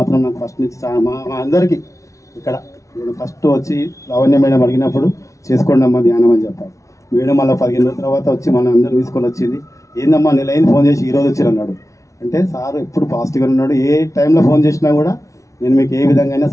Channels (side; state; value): right; late; 0.15 ms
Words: నాకు ఫస్ట్ నుంచి మా అందరికీ ఇక్కడ ఫస్ట్ వచ్చి లావణ్య మేడం అడిగినప్పుడు చేసుకోండి అమ్మా ధ్యానం అని చెప్పారు. మేడం మళ్ళీ 15 రోజుల తర్వాత వచ్చి మన అందరూ తీసుకొని వచ్చింది. ఏందమ్మా నెలైన ఫోన్ చేసి ఈరోజు వచ్చారు అన్నాడు. అంటే సార్ ఎప్పుడు పాజిటివ్గా ఉన్నాడు. ఏ టైంలో ఫోన్ చేసినా కూడా నేను మీకు ఏ విధంగా